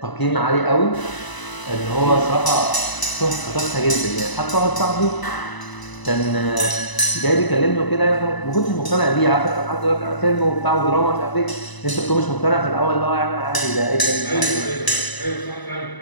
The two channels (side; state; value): right; late; 1.0 ms